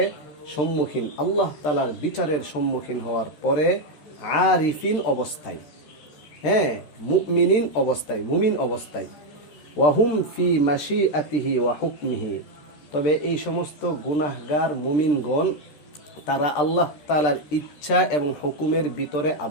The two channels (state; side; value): late; right; 13 ms